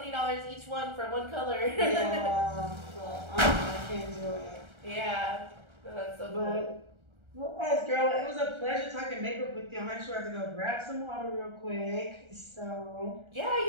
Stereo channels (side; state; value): left; late; 1.3 ms